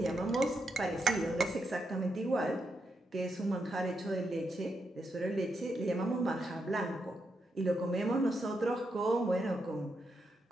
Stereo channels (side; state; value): both; normal; correlation 0.83